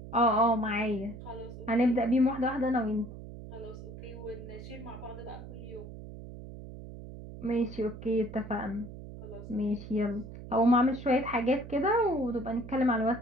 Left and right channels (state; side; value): noise; right; hum, 13 dB below the sound